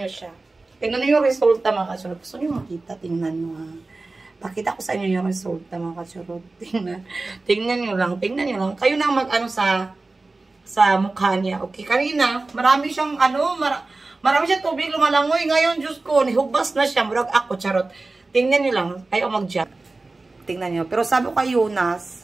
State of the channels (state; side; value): quieter; left; 3.4 dB